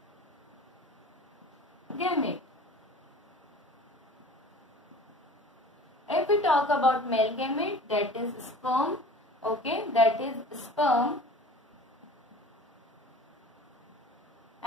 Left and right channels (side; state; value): both; normal; correlation 0.43